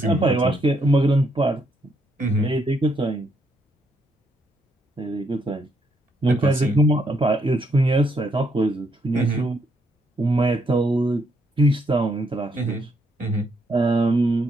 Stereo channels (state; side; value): normal; both; correlation 0.75